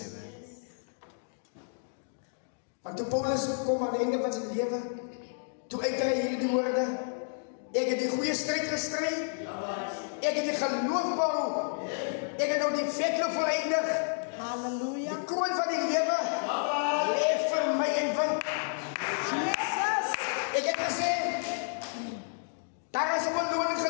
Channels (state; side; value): silent; right; digital silence